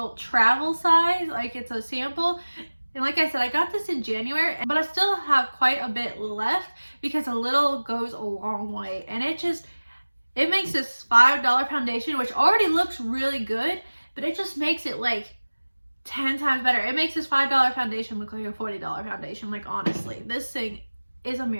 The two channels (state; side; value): inverted; both; correlation -1.00